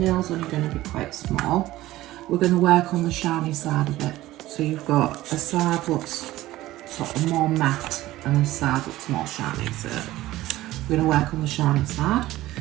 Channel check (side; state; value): left; quieter; 16.3 dB